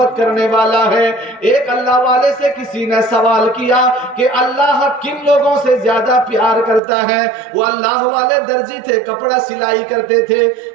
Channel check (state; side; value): drops out; left; at 6.8 s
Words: کرنے والا ہے. ایک اللہ والے سے کسی نے سوال کیا کہ اللہ کن لوگوں سے زیادہ پیار کرتا ہے. وہ اللہ والے درزی تھے, کپڑا سلائی کرتے تھے.